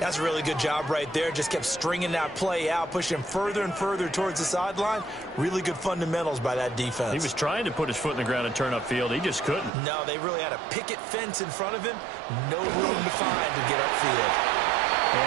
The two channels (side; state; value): left; drops out; at 9.7 s